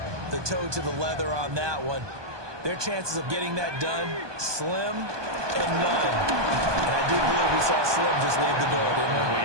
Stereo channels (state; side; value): late; left; 1.2 ms